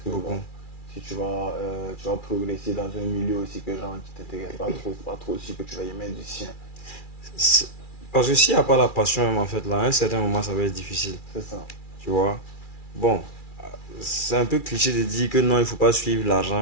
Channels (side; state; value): right; late; 2.4 ms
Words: bon, si tu vas progresser dans un milieu aussi que gens qui t'intéressent pas trop aussi, que tu vas y mettre du sien. Parce que s'il n'y a pas la passion, même en fait, là, à un certain moment, ça va être difficile. C'est ça. Tu vois. Bon, c'est un peu cliché de dire que non, il ne faut pas suivre